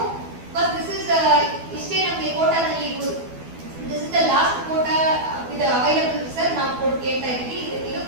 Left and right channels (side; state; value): left; late; 12 ms